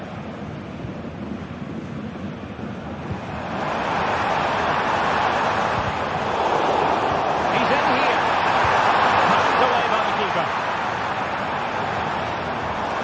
He's in here. Knocked away by the keeper.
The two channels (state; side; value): identical; both; correlation 1.00